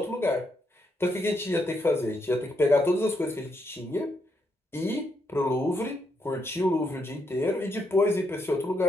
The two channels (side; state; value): both; normal; correlation 0.78